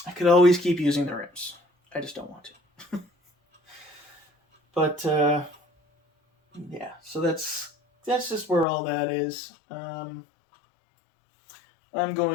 could always keep using the rims. I just don't want to. But yeah, so that's just where all that is. I'm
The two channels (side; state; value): right; drops out; at 8.7 s